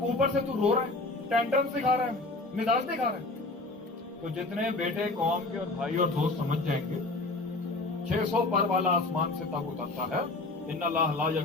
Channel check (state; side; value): quieter; right; 3.1 dB